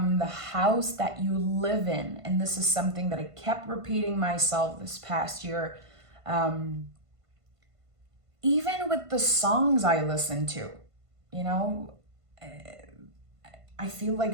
the house that you live in. And this is something that I kept repeating myself this past year. Even with the songs I listen to, you know, I feel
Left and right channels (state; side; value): late; left; 1.5 ms